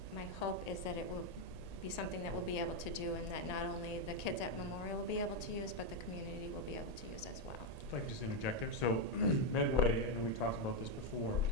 my hope is that it will be something that we'll be able to do, and that not only the kids at Memorial will be able to use, but the community will be able to use as well. If I could just interject there. So Medway, I know we talked about this before,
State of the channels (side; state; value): right; late; 1.8 ms